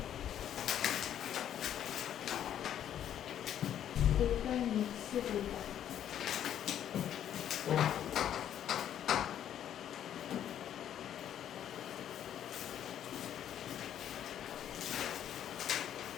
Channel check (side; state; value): right; quieter; 10.3 dB